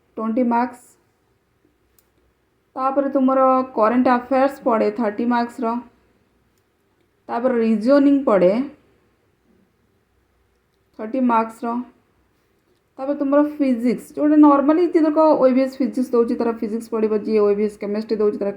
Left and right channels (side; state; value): both; identical; correlation 1.00